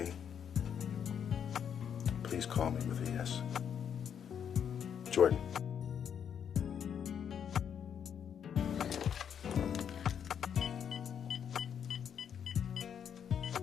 Please call me with a yes. Jordan.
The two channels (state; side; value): quieter; right; 8.2 dB